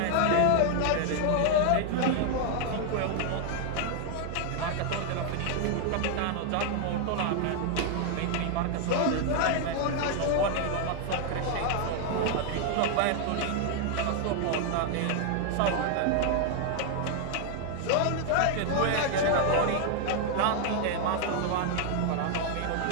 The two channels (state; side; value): different; both; correlation 0.00